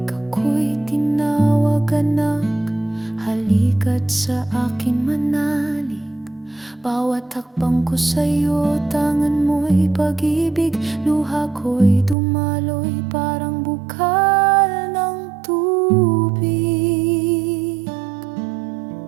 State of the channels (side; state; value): left; drops out; at 12.2 s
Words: ako'y tinawag anak. Halika't sa akin manalig. Bawat hakbang ko sa'yo, tangan mo'y pag-ibig. Luha ko'y dumaloy, parang bukal ng tubig.